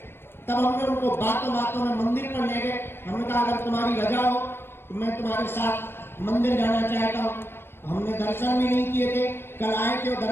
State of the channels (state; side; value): late; right; 0.11 ms